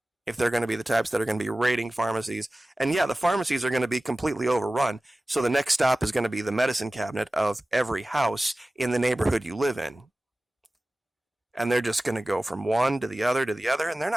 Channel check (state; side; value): normal; both; correlation 0.97